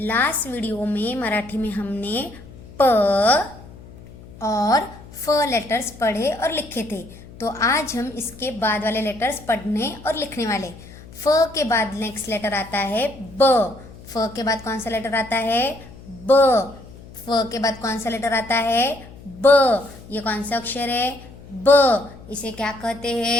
video में मराठी में हमने प और फ लेटर्स पढ़े और लिखे थे। तो आज हम इसके बाद वाले लेटर्स पढ़ने और लिखने वाले। फ के बाद नेक्स्ट लेटर आता है ब। फ के बाद कौन सा लेटर आता है? ब। फ के बाद कौन सा लेटर आता है? ब। ये कौन सा अक्षर है? ब। इसे क्या कहते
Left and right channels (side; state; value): left; noise; hum, 19 dB below the sound